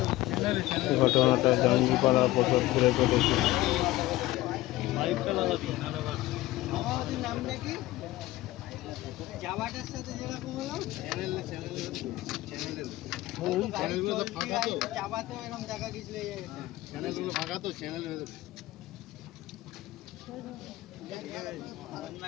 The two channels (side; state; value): right; quieter; 17.2 dB